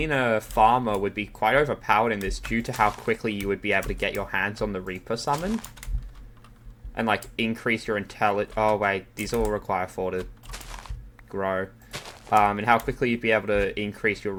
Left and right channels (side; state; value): both; identical; correlation 1.00